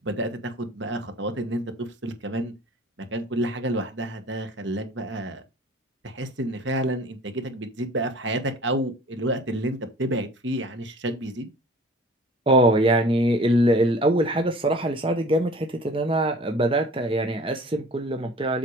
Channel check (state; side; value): normal; both; correlation 0.45